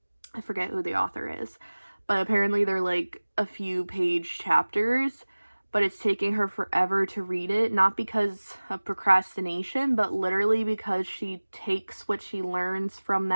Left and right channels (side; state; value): both; inverted; correlation -1.00